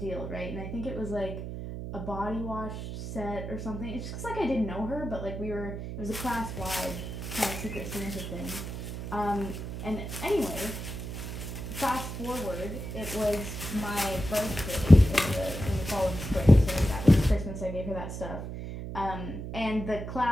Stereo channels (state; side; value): noise; right; hum, 7 dB below the sound